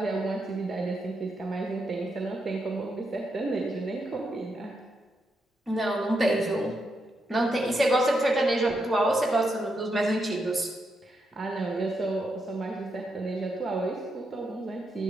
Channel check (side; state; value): both; normal; correlation 0.82